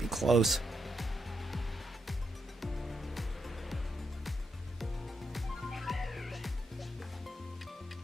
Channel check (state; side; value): normal; both; correlation 0.81